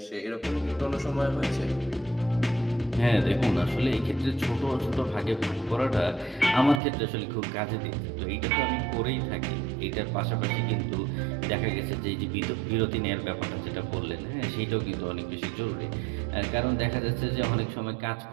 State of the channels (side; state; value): left; drops out; at 6.8 s